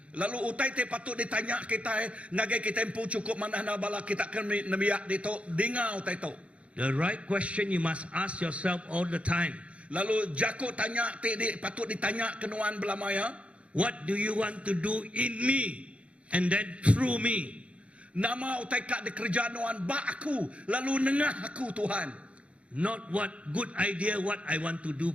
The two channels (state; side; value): late; left; 0.062 ms